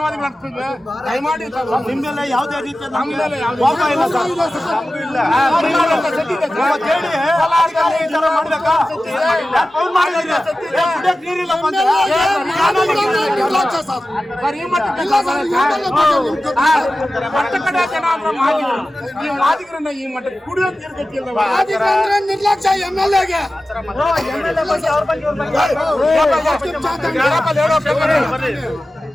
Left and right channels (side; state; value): both; normal; correlation 0.95